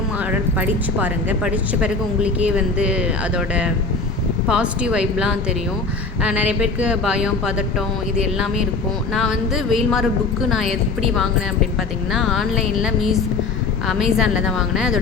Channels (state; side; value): quieter; right; 4.0 dB